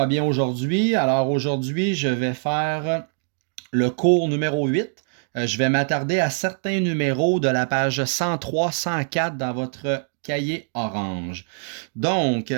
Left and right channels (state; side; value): silent; left; digital silence